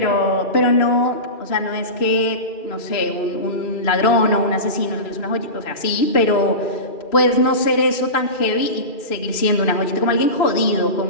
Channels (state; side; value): late; right; 2.9 ms